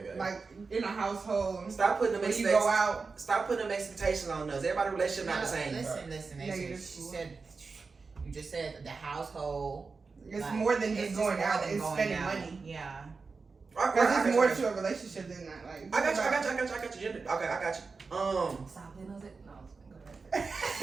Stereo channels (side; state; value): left; quieter; 4.5 dB